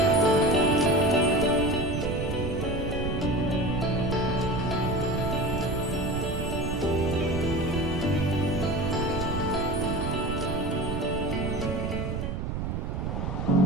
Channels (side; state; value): right; noise; rumble, 3 dB below the sound